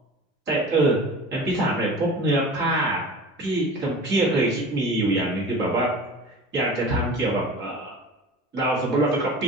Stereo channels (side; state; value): both; normal; correlation 0.37